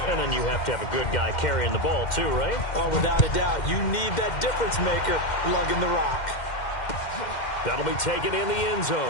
And then you have to have a good guy carrying the ball too, right? Oh, without a doubt. You need that difference maker lugging the rock. That'll be taken in the end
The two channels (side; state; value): right; late; 2.1 ms